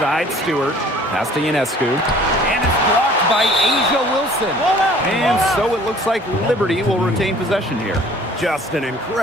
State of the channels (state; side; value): normal; both; correlation 0.52